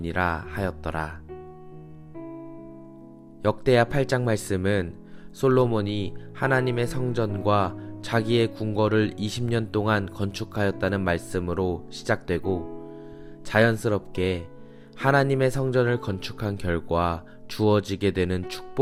하였더라. 역대하 8장 말씀은 솔로몬이 하나님의 성전과 자기의 궁궐을 20년 동안 건축하였다는 말씀으로 시작되고 자연스럽게 하나님의 성전을 건축한 결과 주어지게 되는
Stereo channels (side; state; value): both; identical; correlation 1.00